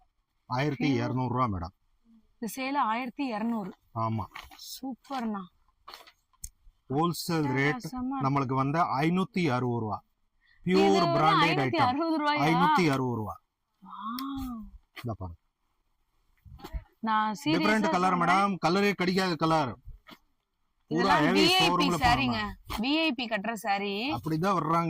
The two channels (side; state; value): both; identical; correlation 1.00